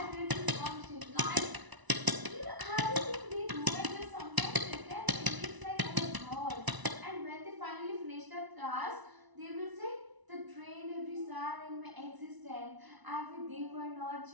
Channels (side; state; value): left; late; 1.0 ms